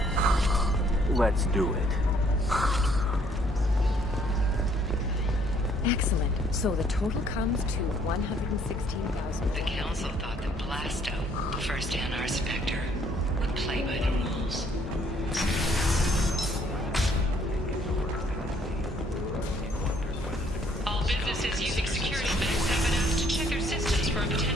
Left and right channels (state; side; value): normal; both; correlation 0.64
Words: Let's do it. Excellent. So the total comes to 116,000. The council thought that Blasto, the first NR Spectre, would play by the rules. All businesses using security banks have been asked to check their systems for a